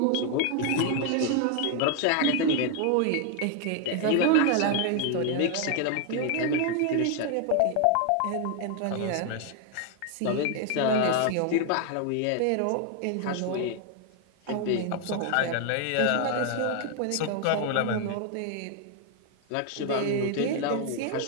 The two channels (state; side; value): different; both; correlation 0.01